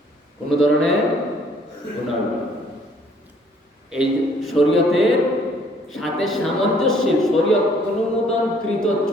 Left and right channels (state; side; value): normal; both; correlation 0.61